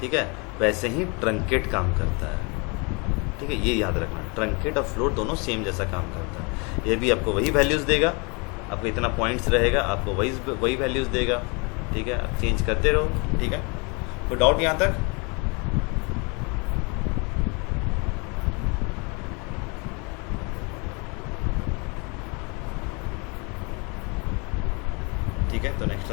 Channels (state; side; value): quieter; right; 30.9 dB